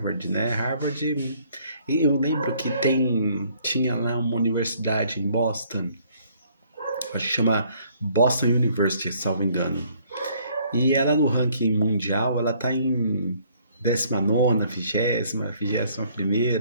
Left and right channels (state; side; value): inverted; both; correlation -0.62